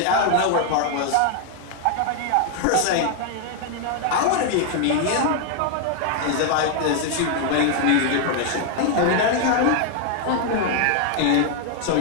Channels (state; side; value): different; both; correlation 0.00